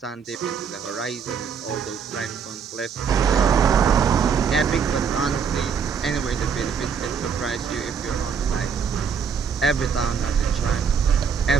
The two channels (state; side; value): quieter; left; 6.5 dB